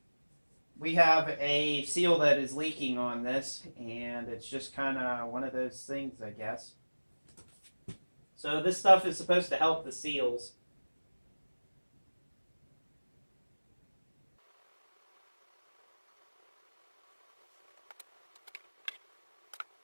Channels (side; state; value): both; inverted; correlation -1.00